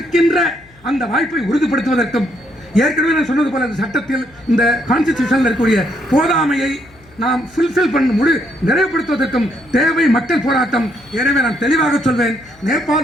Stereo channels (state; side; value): noise; left; hum, 28 dB below the sound